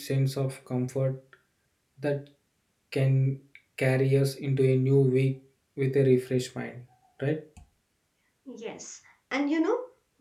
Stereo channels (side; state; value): both; identical; correlation 1.00